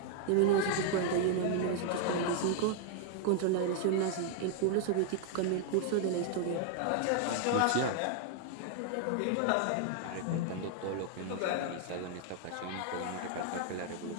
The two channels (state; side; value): different; both; correlation 0.00